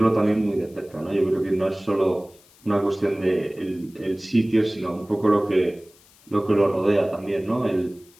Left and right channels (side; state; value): left; noise; hiss, 28 dB below the sound